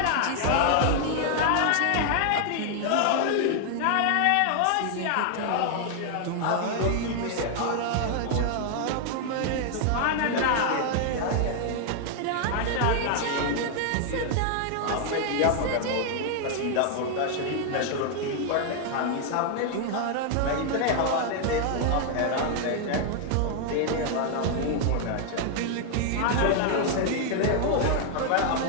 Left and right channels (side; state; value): both; different; correlation 0.00